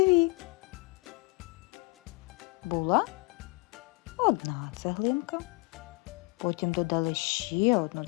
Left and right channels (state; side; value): quieter; right; 27.3 dB